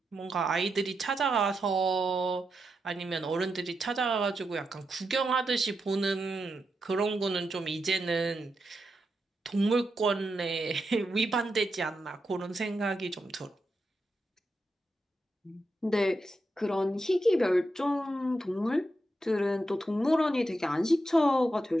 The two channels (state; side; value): normal; both; correlation 0.85